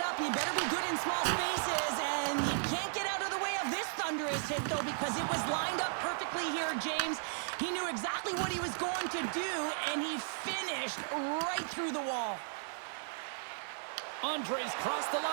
up. You better be good in small spaces, and you can't get out of the way of this thunderous hit, though, because it was lined up perfectly here, James. He knew exactly what he was going to do, and he finished dished right through the wall. Andres crossed the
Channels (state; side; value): silent; left; digital silence